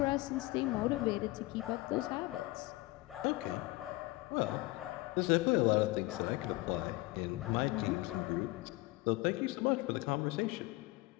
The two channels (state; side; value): quieter; right; 20.8 dB